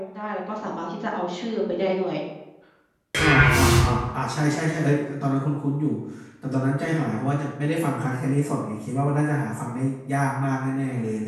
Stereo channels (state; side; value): identical; both; correlation 1.00